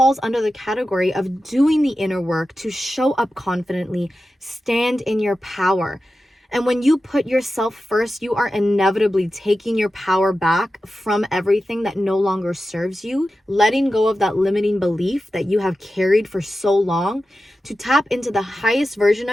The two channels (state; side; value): normal; both; correlation 0.93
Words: under the category of doing the inner work to show up confidently, stand in your power. And when you put yourself first, you are inevitably taking your power back from everything that no longer serves you, letting go of that limiting belief that you have carried for so long, to tap into the highest version